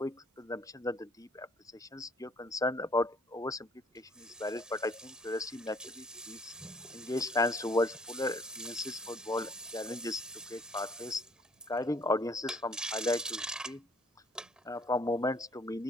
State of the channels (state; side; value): normal; both; correlation 0.59